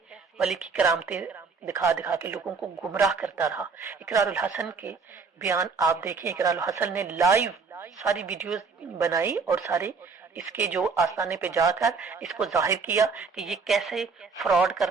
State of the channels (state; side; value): quieter; left; 4.9 dB